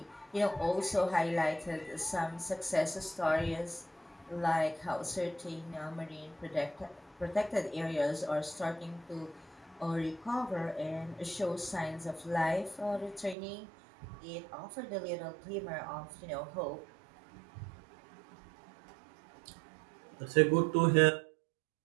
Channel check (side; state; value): left; drops out; at 13.4 s